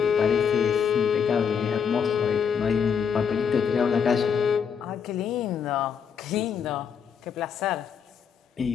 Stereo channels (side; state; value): right; quieter; 7.1 dB